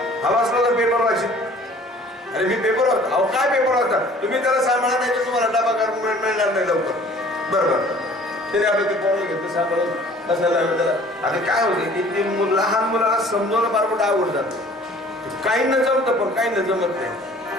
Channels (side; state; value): both; normal; correlation 0.51